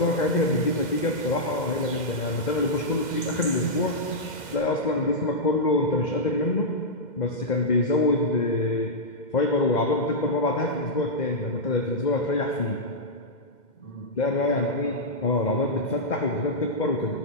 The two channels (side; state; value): right; late; 2.1 ms